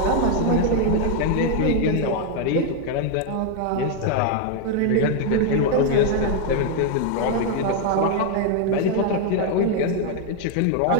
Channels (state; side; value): different; both; correlation 0.00